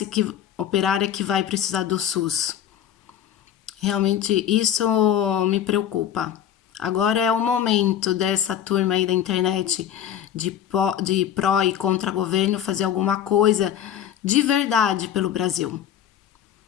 operária que vai precisar do SUS. Realmente isso me preocupa. Agora é o momento dessa turma aí da internet de pró e contra governo fazer alguma coisa de verdade pelo Brasil.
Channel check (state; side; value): quieter; right; 10.0 dB